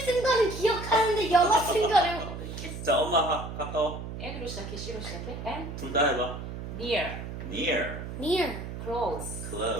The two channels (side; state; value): right; noise; hum, 8 dB below the sound